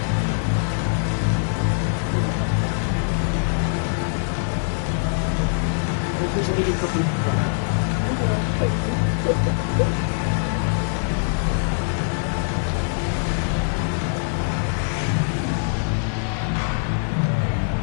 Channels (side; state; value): right; silent; digital silence